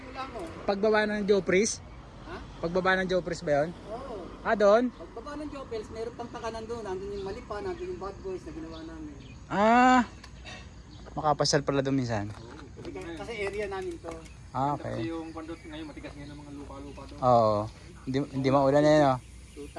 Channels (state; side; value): identical; both; correlation 1.00